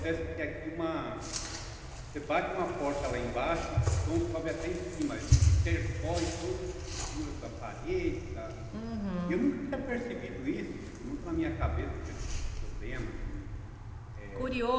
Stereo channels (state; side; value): identical; both; correlation 1.00